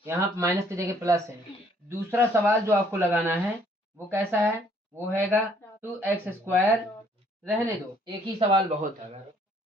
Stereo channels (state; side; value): normal; both; correlation 0.63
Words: यहाँ माइनस की जगह प्लस है। दूसरा सवाल जो आपको लगाना है वो कैसा है, वो हैगा 2x²। रहने दो, एक ही सवाल बहुत है,